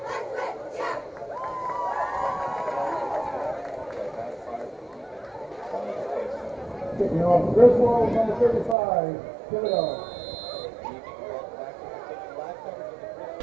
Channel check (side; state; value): left; drops out; at 8.8 s